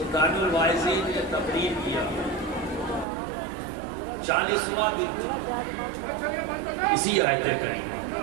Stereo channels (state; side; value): drops out; left; at 3.1 s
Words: الواعظین نے تقریر کیا، 40واں دن اسی آیت کریمہ،